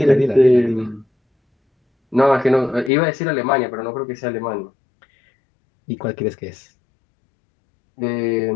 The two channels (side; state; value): right; drops out; at 2.9 s